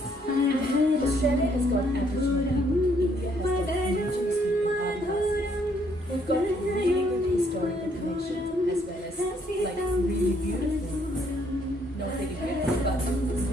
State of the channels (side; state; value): both; normal; correlation 0.68